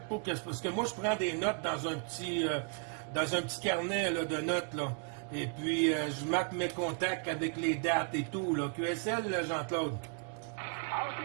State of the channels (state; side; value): quieter; left; 38.8 dB